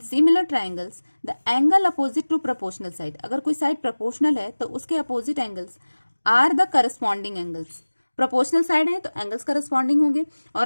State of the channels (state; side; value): inverted; both; correlation -1.00